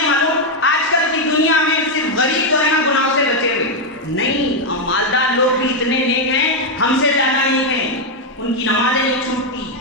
معلوم آج کل کی دنیا میں صرف غریب جو ہے نا گناہوں سے بچے ہوئے، نہیں، مالدار لوگ بھی اتنے نیک ہیں، ہم سے زیادہ نیک ہیں، ان کی نمازیں نہیں چھوٹتی،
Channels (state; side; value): normal; both; correlation 0.01